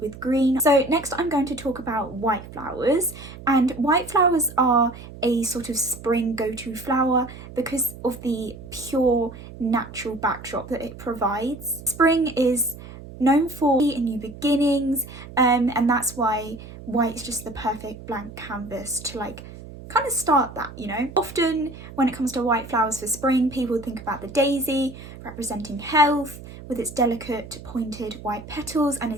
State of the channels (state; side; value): noise; right; hum, 15 dB below the sound